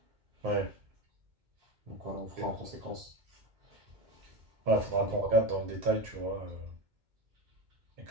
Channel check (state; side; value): late; left; 2.2 ms